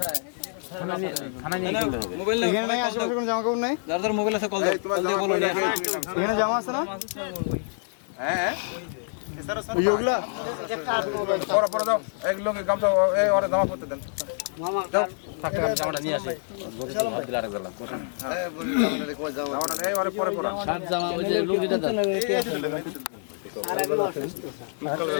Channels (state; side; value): silent; right; 60 dB below the other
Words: থানা নিয়ে গেলে হবে। মোবাইল এখানে নাই, আশেপাশে কোনো জামা কাপড় নাই? যার যার মোবাইল আছে কল দাও, কল দিয়ে বলো নিয়ে আসো। এখানে জামা আছে না? হ্যাঁ ওই যে ওগুলা? পরে পরে দাও এক লোকে গামছা এই ওরে জামা পরতে দেন মামা থাকতে জামাটা নিয়ে আসি দিলা রাখ দিলাম এই বলি জামাটা এই ওরে পরে পরা শার্ট জামা ওই যে লুঙ্গিটা দাও।